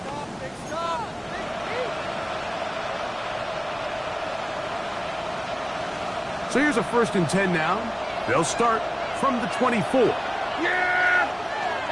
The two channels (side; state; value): both; identical; correlation 1.00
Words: So here's a 1st and 10 now. They'll start from the 24. Yeah!